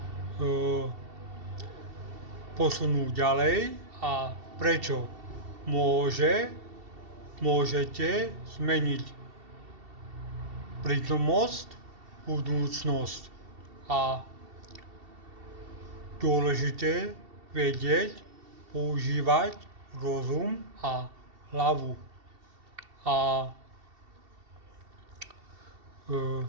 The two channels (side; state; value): left; late; 2.7 ms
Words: posunúť ďalej a prečo môžete zmeniť prítomnosť, budúcnosť a dôležité vedieť, používať rozum a hlavu. A